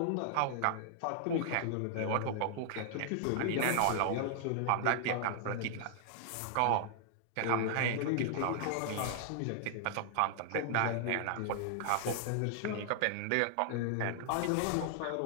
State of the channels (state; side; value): different; both; correlation 0.00